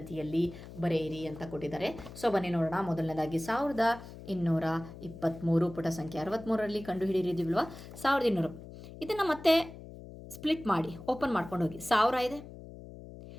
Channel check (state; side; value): noise; left; hum, 15 dB below the sound